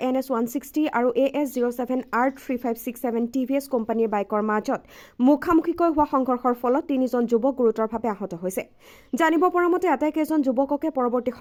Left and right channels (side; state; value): both; identical; correlation 1.00